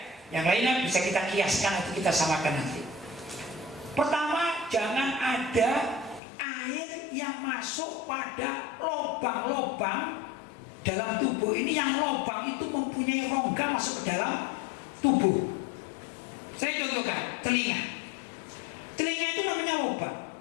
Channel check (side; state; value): right; drops out; at 6.2 s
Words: yang lainnya bisa kita kiaskan atau kita samakan nanti. Pertama, jangan ada air yang masuk pada lubang-lubang dalam tubuh ini, yang lubang itu mempunyai rongga masuk ke dalam tubuh. Saya contohkan, telinga. Telinga itu namanya lubang,